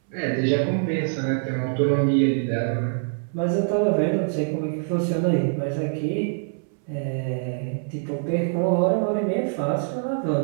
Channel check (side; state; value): left; silent; 62 dB below the other